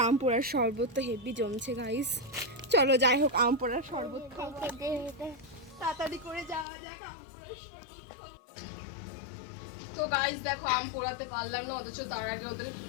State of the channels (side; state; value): right; drops out; at 6.7 s